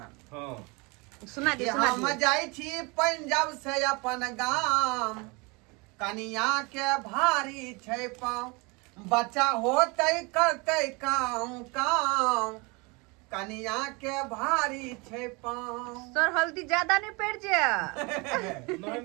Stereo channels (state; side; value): quieter; left; 28.0 dB